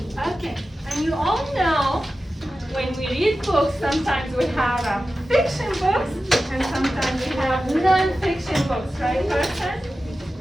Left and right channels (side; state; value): both; normal; correlation 0.94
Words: Okay, and you all know when we read books, sometimes we have fiction books and sometimes we have non-fiction books, right, Carson?